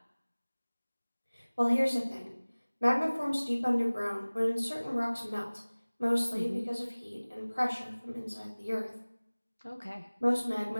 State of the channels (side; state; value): both; inverted; correlation -1.00